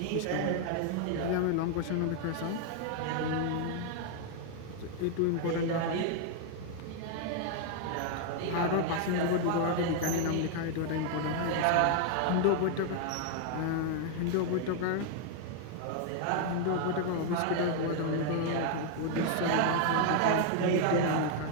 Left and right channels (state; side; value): different; both; correlation 0.00